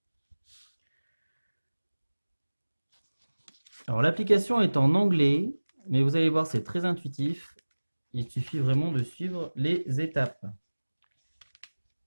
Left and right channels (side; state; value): both; inverted; correlation -1.00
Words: Alors, l'application est en anglais, mais vous allez voir, c'est très intuitif. Il suffit vraiment de suivre les étapes.